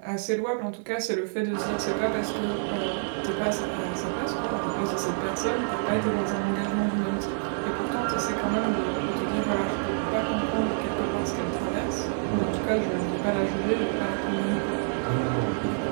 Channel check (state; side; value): silent; left; digital silence